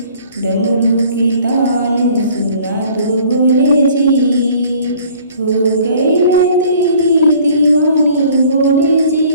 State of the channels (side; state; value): both; inverted; correlation -0.53